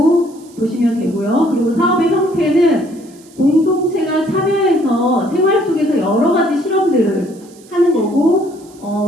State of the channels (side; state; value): right; noise; hiss, 26 dB below the sound